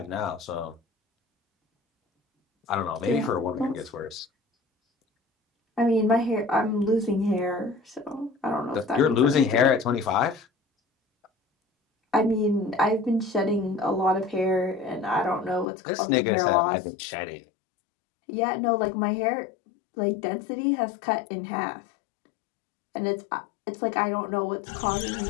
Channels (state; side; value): drops out; right; at 15.7 s